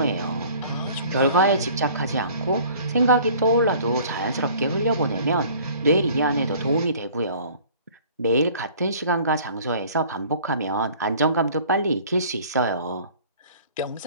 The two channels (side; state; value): both; inverted; correlation -0.50